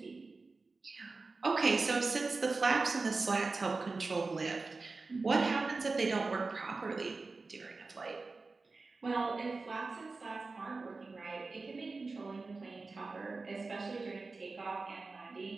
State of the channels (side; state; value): left; quieter; 3.8 dB